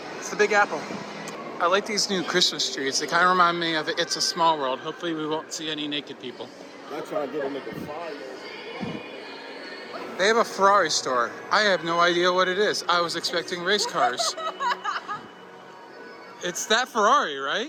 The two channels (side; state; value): both; identical; correlation 1.00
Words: It's the Big Apple. I like these new Christmas trees. They kind of remind me of It's a Small World. Hopefully we won't see any naked people. I'm trying to get a nigga fired. They have a Ferrari store. I have no idea what it is. I was expecting race cars. It's that Ferrari,